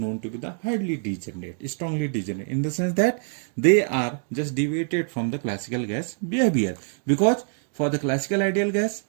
to be the highly degenerate, strongly degenerate, in the sense that they are just deviated from the classical gas behavior. Because for the classical ideal gas,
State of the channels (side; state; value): left; silent; 59 dB below the other